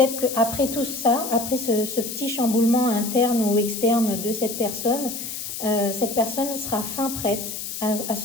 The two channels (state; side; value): noise; left; hiss, 7 dB below the sound